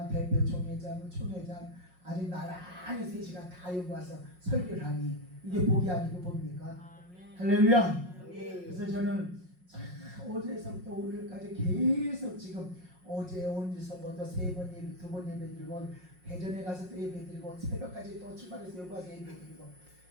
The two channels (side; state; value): left; late; 5.5 ms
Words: 대표 총회장, 총회장 아주 나란히 셋이가 다 여기 와서 설교를 하니 이게 복이 아니고 뭡니까? 할렐루야. 그래서 저는 어제서부터 오늘까지 계속 지금 어제 온주서부터 3번 예배, 2번 예배 드리고 대전에 가서 또 예배 드리고 새벽까지 또 출발해서 여기 와서 예배 드리고